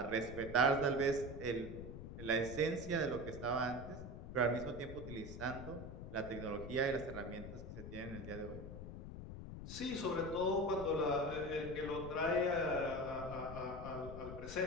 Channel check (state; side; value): noise; left; rumble, 9 dB below the sound